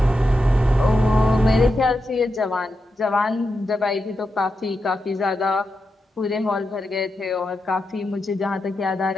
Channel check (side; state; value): both; normal; correlation 0.87